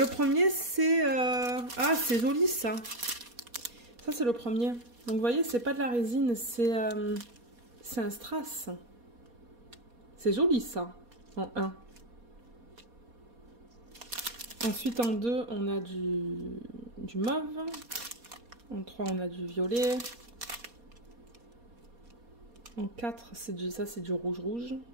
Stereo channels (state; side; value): late; left; 4.2 ms